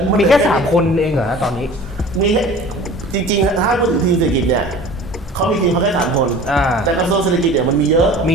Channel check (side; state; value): both; normal; correlation 0.42